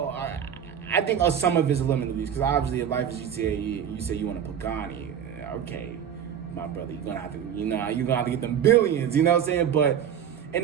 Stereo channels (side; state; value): left; quieter; 8.8 dB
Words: think some of it's limiting beliefs, because obviously if life is GTA, you say you want a Pagani, okay, my brother, you're gonna have to get them billions, you know what I'm saying? But in